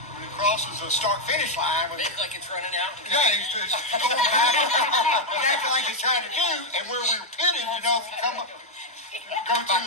when it crosses the start-finish line, It's like it's running out. yeah, he's going back, exactly like he's trying to do, and where we were pitted, you know, if you come up, go Back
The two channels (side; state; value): both; normal; correlation 0.00